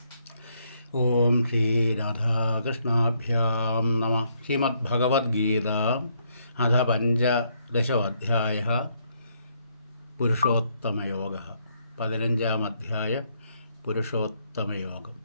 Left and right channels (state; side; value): inverted; both; correlation -0.73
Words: ഓം ശ്രീരാധാകൃഷ്ണാഭ്യാം നമഃ. ശ്രീമദ്ഭഗവത്ഗീത അഥ പഞ്ചദശോऽധ്യായः പുരുഷോത്തമയോഗः. 15-ാം അധ്യായം പുരുഷോത്തമയോഗം.